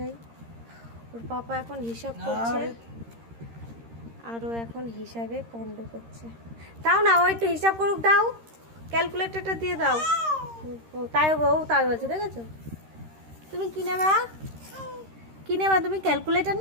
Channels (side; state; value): left; late; 13 ms